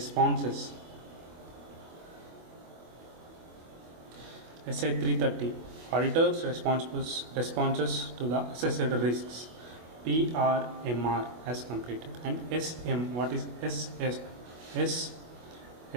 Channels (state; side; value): late; left; 25 ms